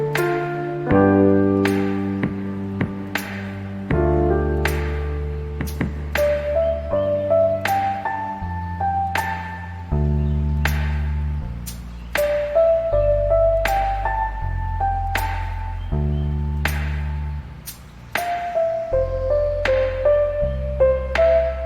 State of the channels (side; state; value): both; identical; correlation 1.00